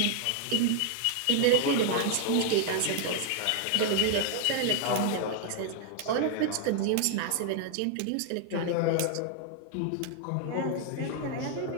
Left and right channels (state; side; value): different; both; correlation 0.00